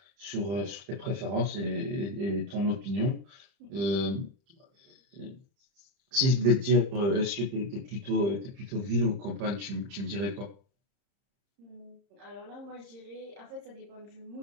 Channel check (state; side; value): late; left; 30 ms